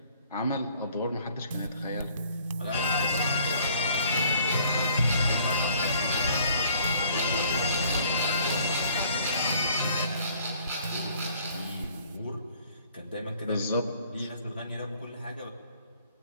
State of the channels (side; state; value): both; inverted; correlation -0.59